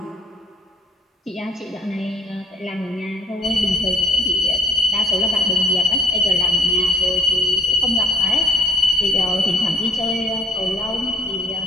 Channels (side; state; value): both; normal; correlation 0.64